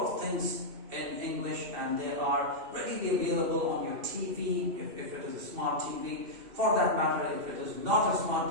of things in English, and they are readily available on your TV if it is a smart TV. For that matter, if it is not a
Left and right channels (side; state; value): left; late; 2.7 ms